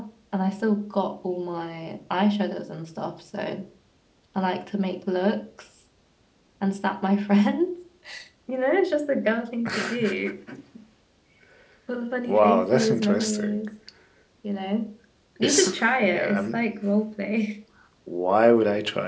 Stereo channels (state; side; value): identical; both; correlation 1.00